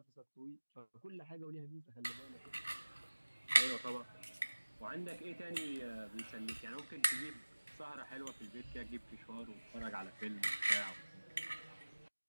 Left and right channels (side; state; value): both; inverted; correlation -1.00